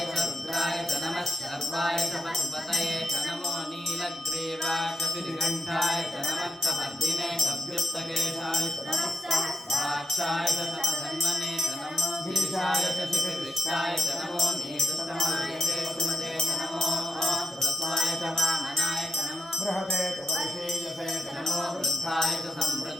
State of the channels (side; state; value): both; normal; correlation 0.88